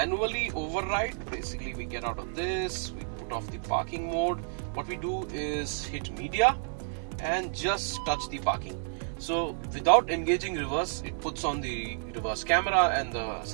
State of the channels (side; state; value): left; silent; digital silence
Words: override, basically we get out of this, we put off the parking mode. What we do is hit media and just touch the parking. So without engaging reverse, it puts on the reverse camera and the